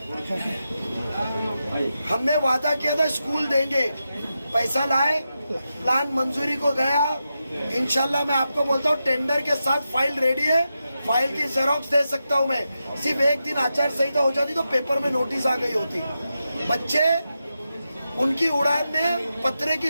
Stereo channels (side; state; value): both; inverted; correlation -0.89